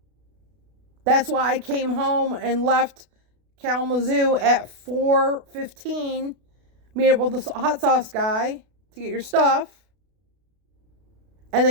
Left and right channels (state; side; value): late; left; 33 ms